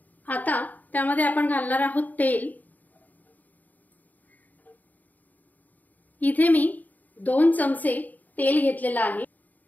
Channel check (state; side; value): late; right; 0.081 ms